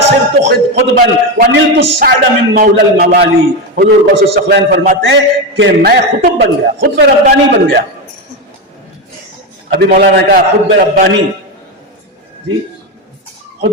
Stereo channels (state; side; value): normal; both; correlation 0.13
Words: صرت خطبا ونلت السعد من مولا الموالی۔ حضور غوث الثقلین فرماتے ہیں کہ میں خطب بن گیا، خطب ربانی بن گیا۔ ابھی مولانا نے کہا خطب ربانی، جی